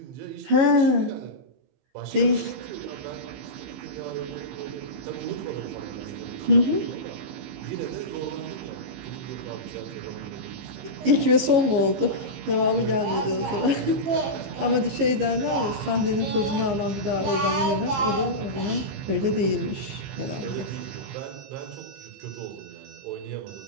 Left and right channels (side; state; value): left; late; 15 ms